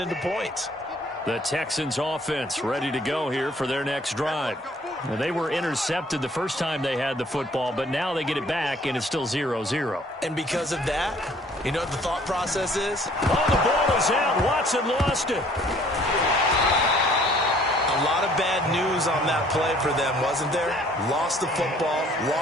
points. The Texans offense ready to go here for their next drive. Now, they were intercepted the first time they had the football, but now they get it back, and it's still 0-0. And because of that, you know what the thought process is? Oh, the ball is out. Watson lost it. A lot of bad news on that play for them, wasn't there? Lost the football,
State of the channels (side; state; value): both; normal; correlation 0.58